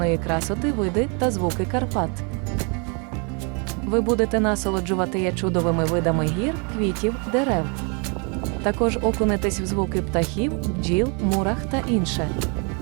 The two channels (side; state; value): left; quieter; 35.0 dB